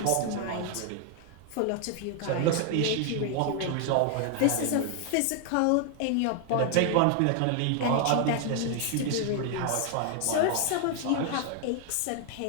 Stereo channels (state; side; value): different; both; correlation 0.00